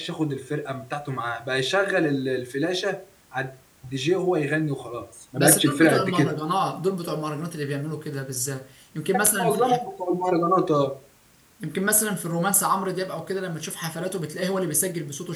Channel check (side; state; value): both; identical; correlation 1.00